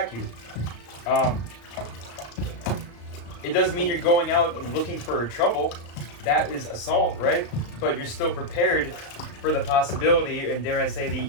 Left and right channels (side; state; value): right; late; 34 ms